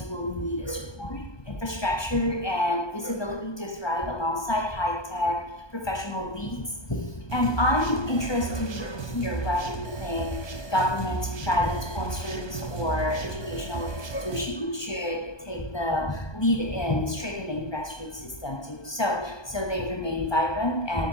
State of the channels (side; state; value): right; late; 1.2 ms